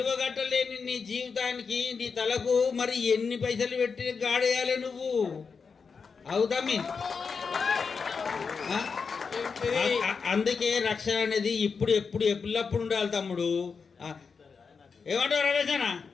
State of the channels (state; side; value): quieter; right; 5.4 dB